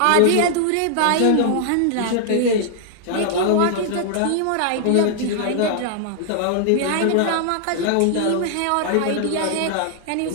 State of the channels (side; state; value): both; different; correlation 0.00